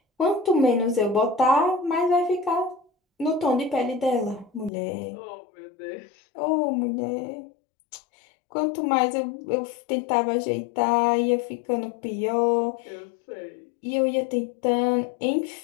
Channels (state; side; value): drops out; right; at 4.7 s